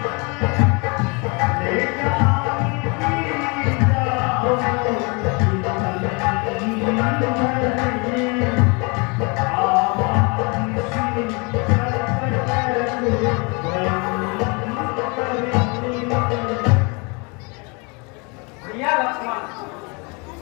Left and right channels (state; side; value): quieter; right; 30.8 dB